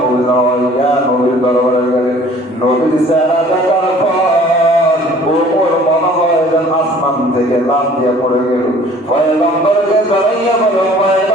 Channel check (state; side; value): normal; both; correlation 0.52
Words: পবিত্র হইয়া নবীর দরবারে গেলেন। নবীর চেহারা দেখার পর ওমর মনে হয় যেন আসমান থেকে লাফ দিয়ে পড়ে গেল। পয়গম্বরকে ধরাইয়া বলো,